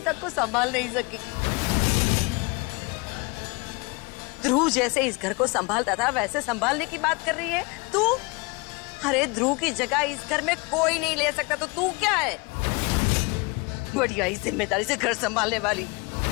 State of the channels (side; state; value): right; quieter; 27.8 dB